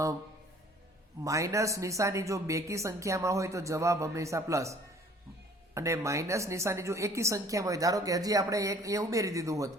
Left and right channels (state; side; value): normal; both; correlation 0.54